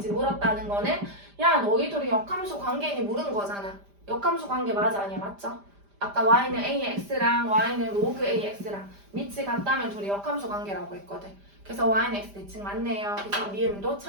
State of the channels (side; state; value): left; late; 5.0 ms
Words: 물었다는 거는 야 너희 둘이 역함수 관계니 물은 거잖아. 역함수 관계 맞아 아니야? 맞죠? 아까 y는 a의 x랑 y는 로그 a의 x랑 밑이 같다면 둘이 역함수 관계라고 했거든. 그래서 y는 x 대칭 맞네요. 그래서 미음도